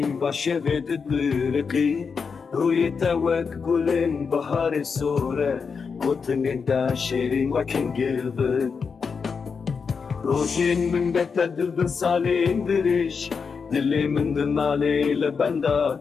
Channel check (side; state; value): right; quieter; 5.6 dB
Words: باشفت الطريقي ويتوك كلن بحر السورة وطن داشرين وكن قلبك روشين من بيت بالصالين دريش دلي من دمالي لبندا